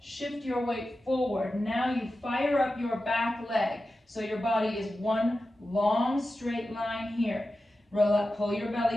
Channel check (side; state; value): both; normal; correlation 0.92